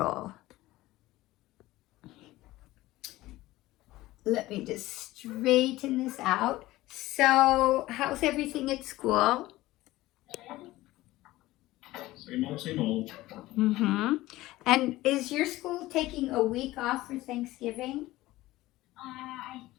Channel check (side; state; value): right; quieter; 17.5 dB